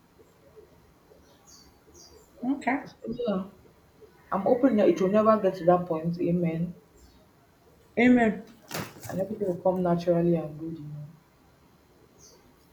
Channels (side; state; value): both; identical; correlation 1.00